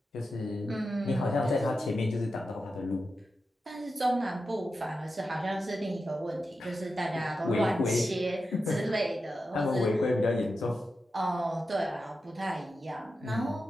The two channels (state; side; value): normal; both; correlation 0.90